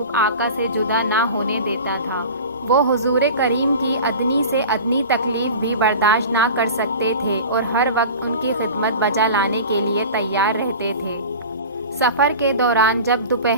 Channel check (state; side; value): inverted; both; correlation -0.36